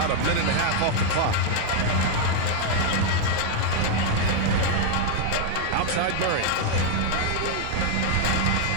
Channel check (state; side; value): different; both; correlation 0.00